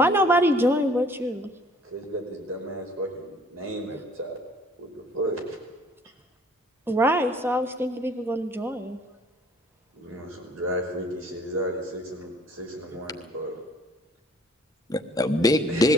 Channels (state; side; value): normal; both; correlation 0.56